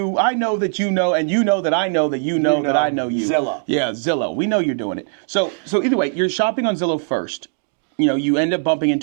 I know that you know, and you know that I know that you know that I know you. Zillow. Yeah, Zillow. We know you're doing it. So either way, you're shopping on Zillow first. You end up bumping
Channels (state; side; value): silent; left; digital silence